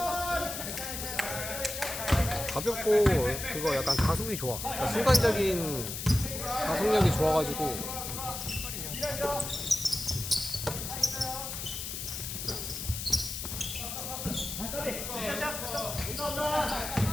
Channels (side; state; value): left; noise; hiss, 5 dB below the sound